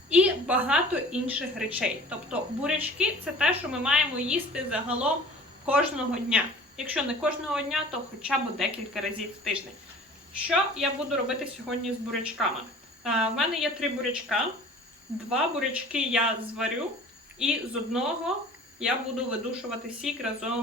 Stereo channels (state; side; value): normal; both; correlation 0.45